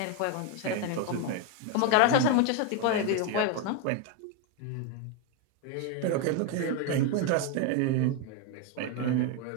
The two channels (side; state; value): both; different; correlation 0.02